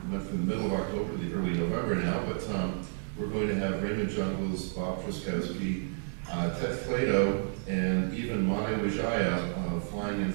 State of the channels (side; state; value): left; silent; digital silence